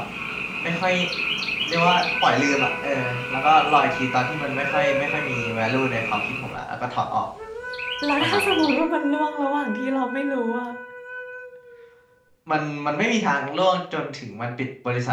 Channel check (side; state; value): both; identical; correlation 1.00